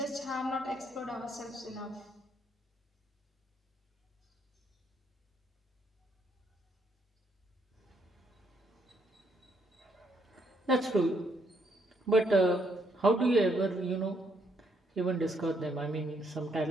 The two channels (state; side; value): normal; both; correlation 0.73